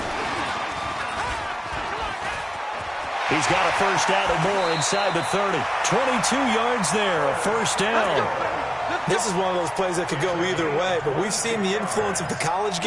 He's got a first down and more inside the 30. 22 yards there, a first down. This is one of those plays that could go either way, but we've seen the influence of the college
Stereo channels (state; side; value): identical; both; correlation 1.00